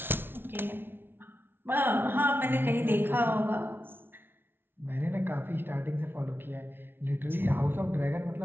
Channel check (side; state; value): left; late; 0.11 ms